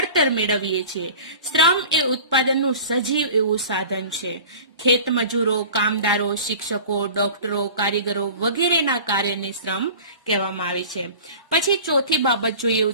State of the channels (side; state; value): both; inverted; correlation -0.40